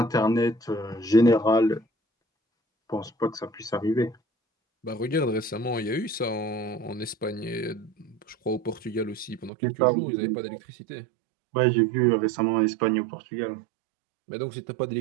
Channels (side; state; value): left; drops out; at 9.5 s